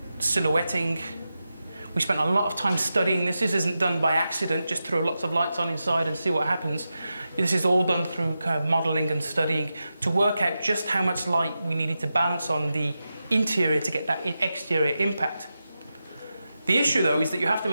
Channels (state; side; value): inverted; both; correlation -0.90